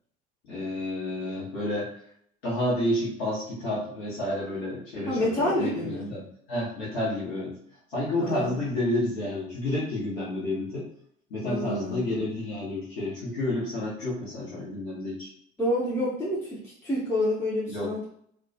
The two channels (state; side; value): normal; both; correlation 0.49